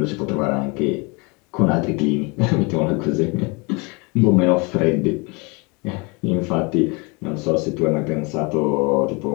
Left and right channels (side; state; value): right; quieter; 29.3 dB